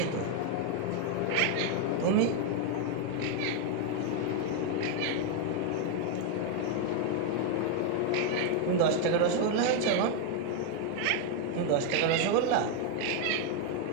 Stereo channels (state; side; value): different; both; correlation 0.01